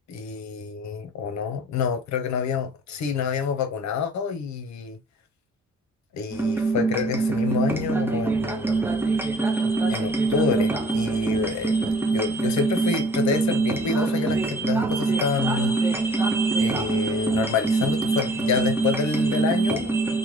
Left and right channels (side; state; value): both; normal; correlation 0.52